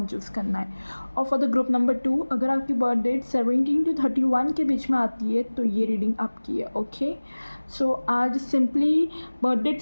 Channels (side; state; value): both; inverted; correlation -1.00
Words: चूज़ करना है। और फॉर द ग्रुप नंबर 2, अगर आपकी बर्थ डेट 17 to 31 के बीच में आती है तो ये रीडिंग आपकी है। ओके, सो आज simply birth